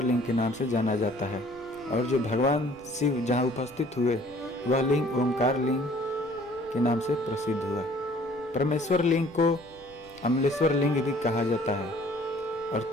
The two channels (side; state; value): left; noise; rumble, 27 dB below the sound